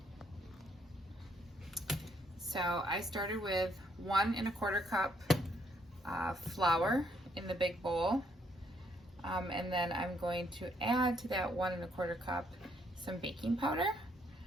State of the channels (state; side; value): normal; both; correlation 0.71